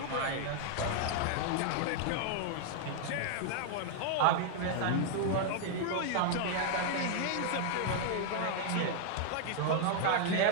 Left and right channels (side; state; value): both; different; correlation 0.00